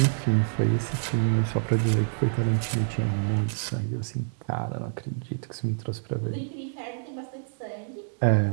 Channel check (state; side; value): silent; left; digital silence